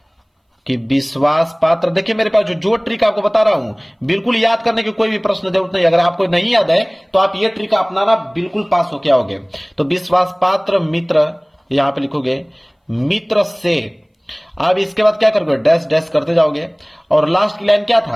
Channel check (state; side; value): identical; both; correlation 1.00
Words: कि विश्वास पात्र। देखिए मेरे पास जो ट्रिक आपको बता रहा हूं, बिल्कुल याद करने की कोई भी प्रश्न जरूरत नहीं। अगर आपको नहीं याद है तो आप ये ट्रिक अपनाना, बिल्कुल पास हो क्या होगे। तो विश्वास पात्र मित्र, यहां पे लिखोगे मित्र से। अब इसके बाद क्या करोगे, डैश डैश करते जाओगे और लास्ट की लाइन क्या